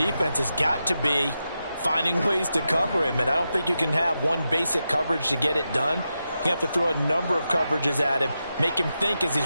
has got to be finding ways to cover him. And I don't think you can have one basic coverage to get it done. You have to throw a number of coverages at him, make him think as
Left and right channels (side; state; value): both; inverted; correlation -0.88